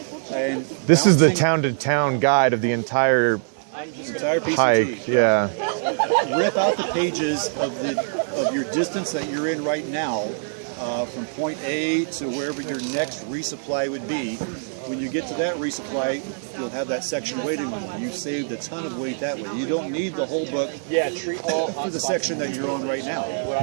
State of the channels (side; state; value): left; silent; 58 dB below the other